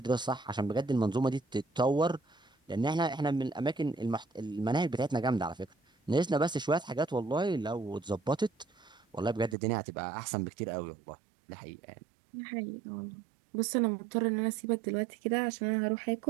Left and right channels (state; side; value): drops out; left; at 9.6 s